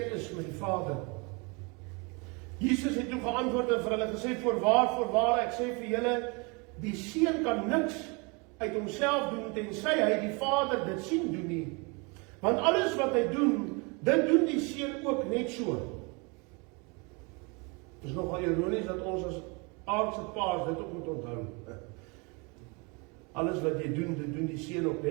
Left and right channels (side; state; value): left; quieter; 30.3 dB